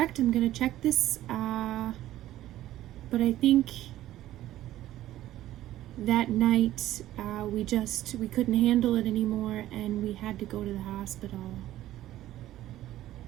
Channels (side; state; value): left; quieter; 14.1 dB